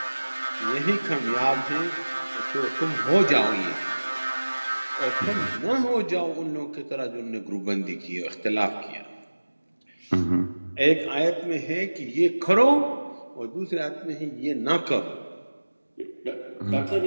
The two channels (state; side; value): inverted; both; correlation -1.00